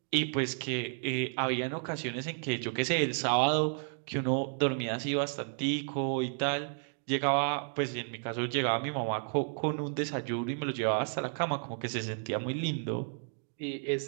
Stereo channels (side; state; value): left; silent; 56 dB below the other